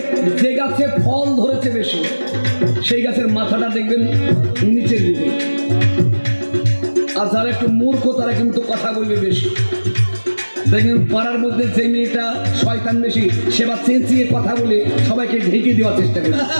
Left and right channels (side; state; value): both; inverted; correlation -1.00